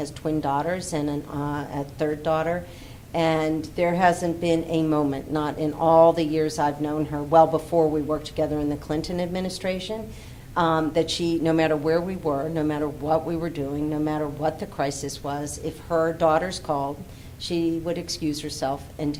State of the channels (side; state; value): both; identical; correlation 1.00